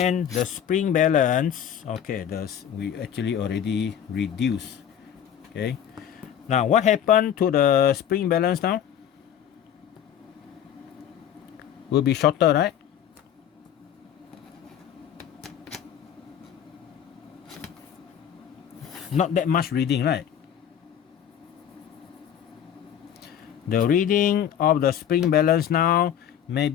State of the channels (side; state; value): right; quieter; 9.5 dB